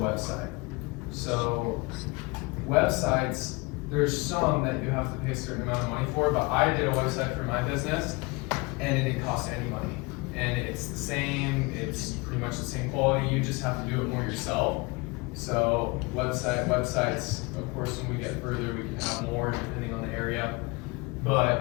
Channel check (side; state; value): right; quieter; 26.4 dB